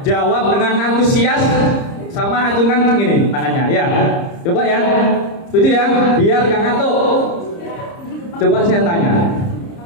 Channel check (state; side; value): late; right; 30 ms